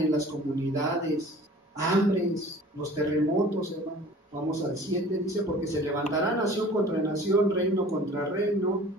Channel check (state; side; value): normal; both; correlation 0.46